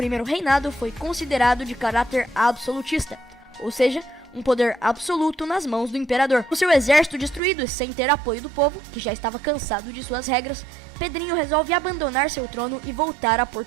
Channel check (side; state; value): left; drops out; at 7.4 s